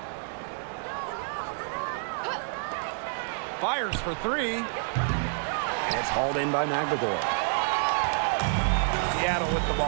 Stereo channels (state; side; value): silent; left; digital silence